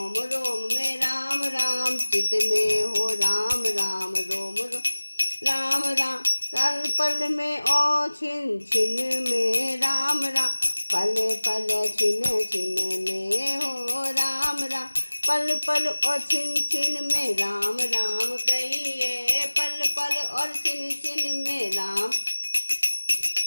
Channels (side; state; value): both; inverted; correlation -1.00